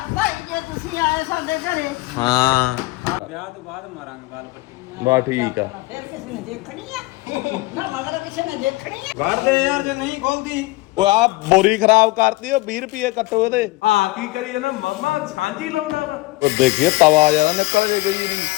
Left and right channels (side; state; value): right; quieter; 20.4 dB